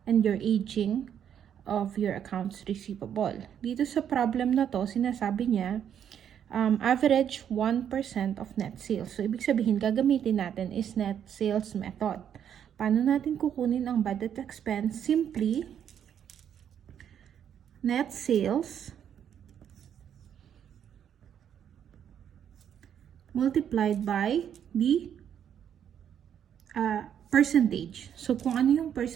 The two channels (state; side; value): quieter; left; 9.0 dB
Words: and your aging of your accounts receivable. Dito sa problem na to, sinasabi niya, average 1% of net sales. So, ibig sabihin, gagamitin natin is net sales method. Paano natin kukunin ang bad debt expense? Simply, net sales multiplied by the percentage. So, kung ano yung